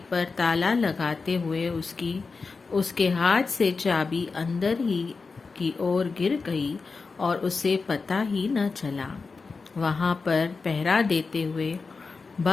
पर ताला लगाते हुए उसके हाथ से चाबी अंदर ही की ओर गिर गई और उसे पता ही न चला। वहां पर पहरा देते हुए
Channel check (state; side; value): quieter; right; 4.4 dB